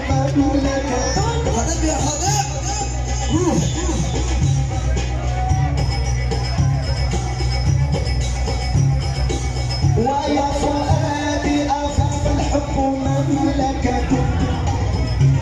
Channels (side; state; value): both; identical; correlation 1.00